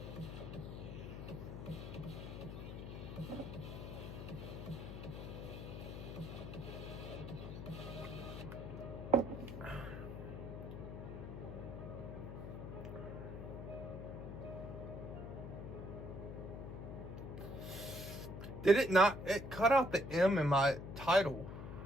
Did it not? It cut out the M in my title.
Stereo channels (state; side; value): noise; left; hum, 8 dB below the sound